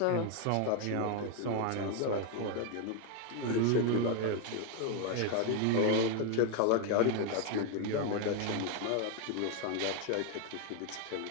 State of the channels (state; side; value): different; both; correlation 0.01